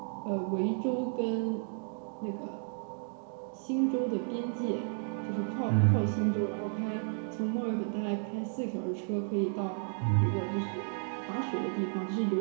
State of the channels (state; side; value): silent; left; 56 dB below the other